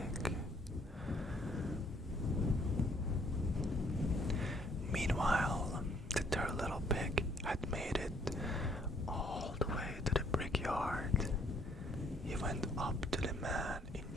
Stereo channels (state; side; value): normal; both; correlation 0.64